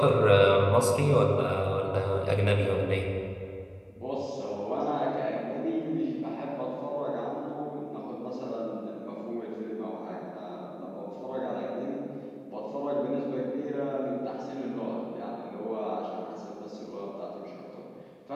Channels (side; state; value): both; identical; correlation 1.00